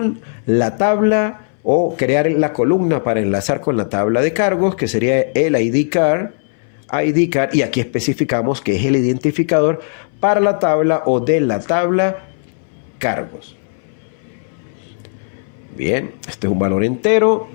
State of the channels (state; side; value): silent; right; 63 dB below the other